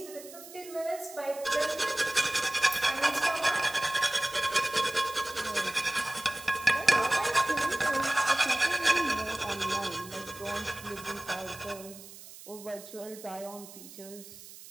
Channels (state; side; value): noise; right; hiss, 16 dB below the sound